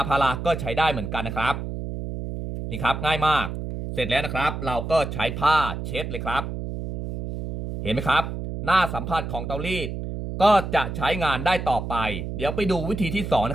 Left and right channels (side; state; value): right; noise; hum, 6 dB below the sound